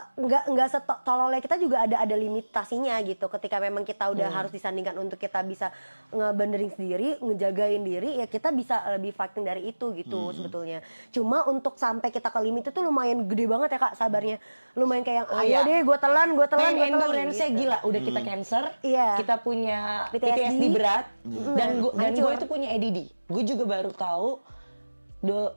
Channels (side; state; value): both; inverted; correlation -1.00